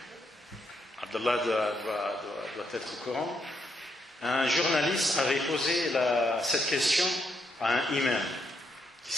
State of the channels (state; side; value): normal; both; correlation 0.77